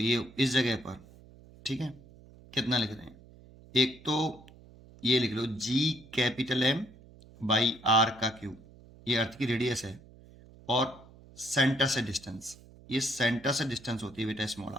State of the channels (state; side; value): noise; right; hum, 22 dB below the sound